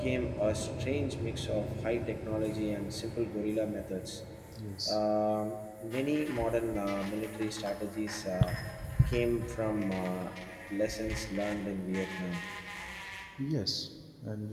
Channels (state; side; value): identical; both; correlation 1.00